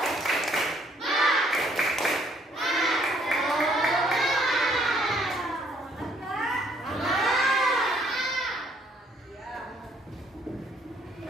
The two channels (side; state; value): both; normal; correlation 0.65